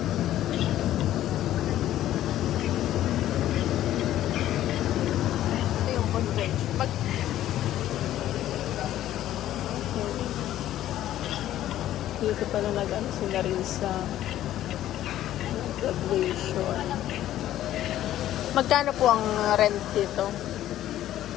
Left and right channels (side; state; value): right; quieter; 13.0 dB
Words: Ito yung convention. Dito pala nag-ano sila rin sa graduation. Magkano po ang rent dito?